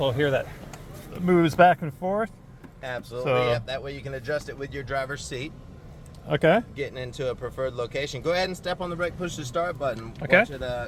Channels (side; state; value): both; identical; correlation 1.00